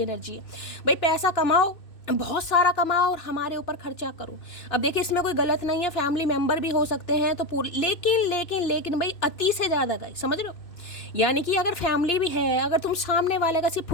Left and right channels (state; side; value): late; right; 2.6 ms